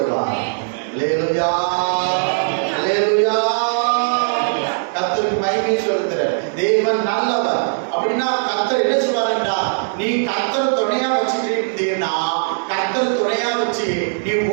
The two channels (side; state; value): left; silent; 66 dB below the other